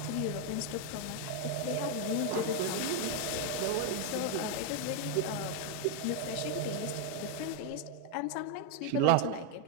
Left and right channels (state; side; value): different; both; correlation 0.01